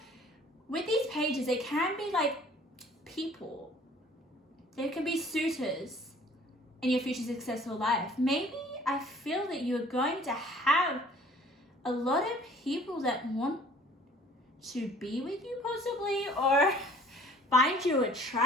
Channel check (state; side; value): normal; both; correlation 0.53